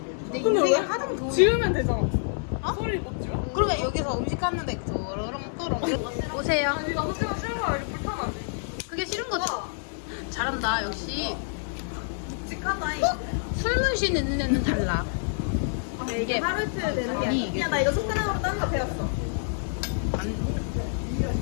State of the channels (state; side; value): silent; right; digital silence